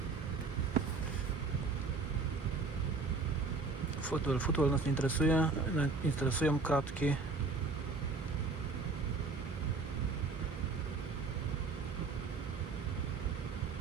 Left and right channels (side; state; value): left; quieter; 4.0 dB